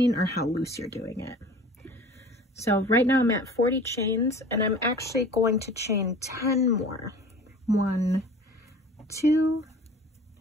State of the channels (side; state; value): both; normal; correlation 0.43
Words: or how loose you're doing it. So right now I'm at 40 chains, and I'm actually going to chain 10 more. 1, 2,